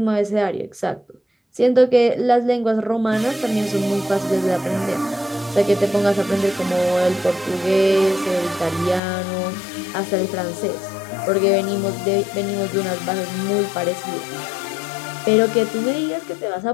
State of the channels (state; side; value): drops out; right; at 9.0 s